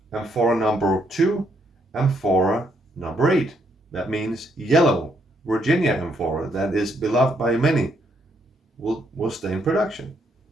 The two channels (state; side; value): normal; both; correlation 0.74